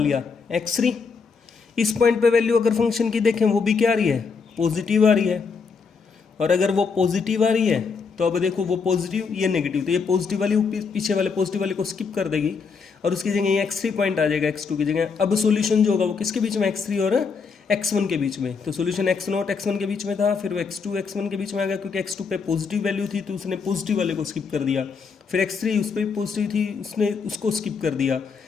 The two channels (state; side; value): quieter; right; 5.3 dB